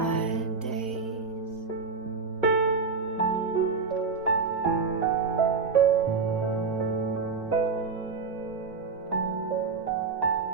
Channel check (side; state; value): left; quieter; 4.8 dB